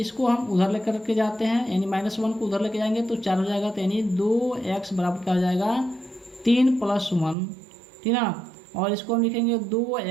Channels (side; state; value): left; drops out; at 7.4 s